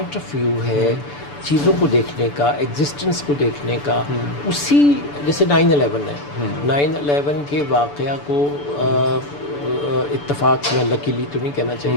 آف ویو ہے چیزوں کو دیکھنے کا, ایگزسٹنس کو دیکھنے کا, اسی جیسے 9/11 ہے, 9/11 کے واقعہ کو اتفاق سے, میں لکیلی تو نہیں کہنا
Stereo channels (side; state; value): right; late; 6.9 ms